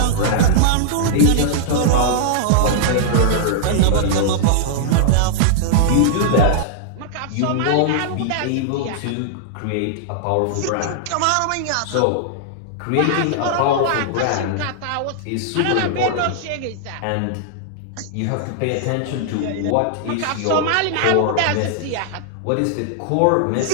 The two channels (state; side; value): different; both; correlation -0.01